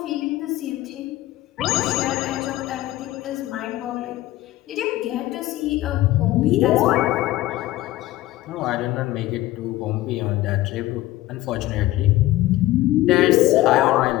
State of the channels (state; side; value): quieter; right; 16.3 dB